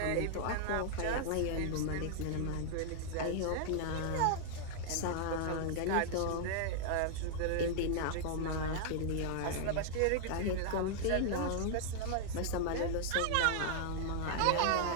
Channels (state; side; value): different; both; correlation -0.01